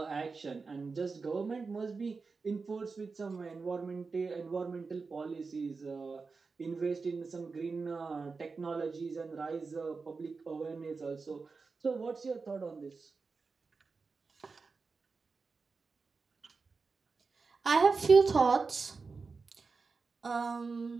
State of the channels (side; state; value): left; quieter; 4.5 dB